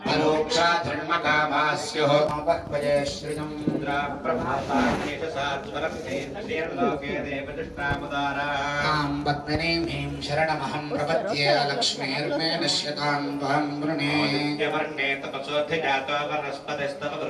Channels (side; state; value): both; identical; correlation 1.00